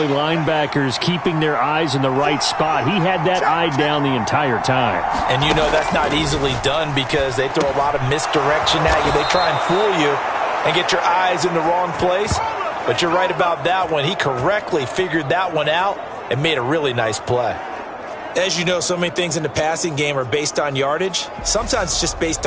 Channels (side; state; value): both; identical; correlation 1.00